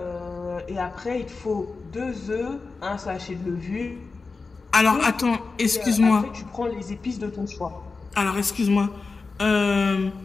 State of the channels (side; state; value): right; quieter; 4.2 dB